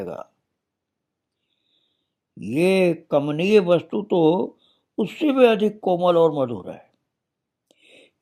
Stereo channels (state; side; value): identical; both; correlation 1.00